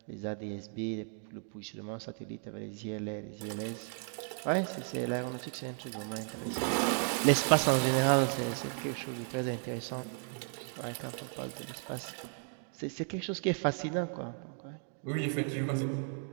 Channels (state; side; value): silent; left; 55 dB below the other